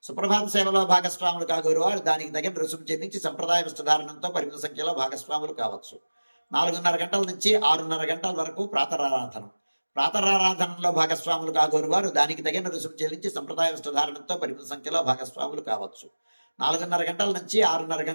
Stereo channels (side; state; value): both; inverted; correlation -1.00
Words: సుప్రభాత సేవలో భాగస్వాములు కాగోరు వారు దానికి తగిన రుసుము చెల్లించి సంప్రదాయ వస్త్రధారణంతో పరిమిత సంఖ్యలో భాగస్వాములు కావచ్చు. 4:30 గంటల నుంచి 6:30 గంటల వరకు ప్రాతరారాధనం. ప్రాతరారాధనలో భాగస్వాములు కాగోరు వారు దానికి తగిన రుసుము చెల్లించి సంప్రదాయ వస్త్రధారణంతో పరిమిత సంఖ్యలో భాగస్వాములు కావచ్చు. 4:30 గంటల నుంచి 6:30